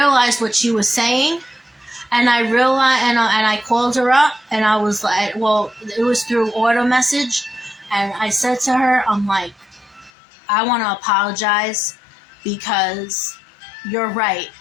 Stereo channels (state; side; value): drops out; right; at 10.1 s